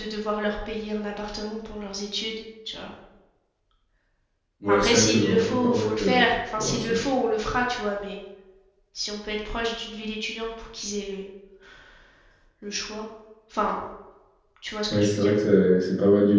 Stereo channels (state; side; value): identical; both; correlation 1.00